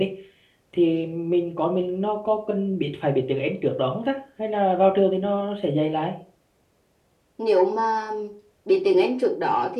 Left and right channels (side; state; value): both; identical; correlation 1.00